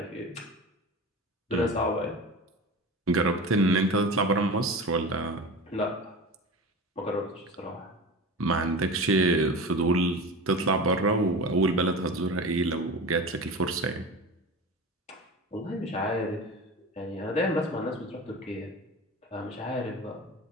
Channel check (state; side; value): normal; both; correlation 0.30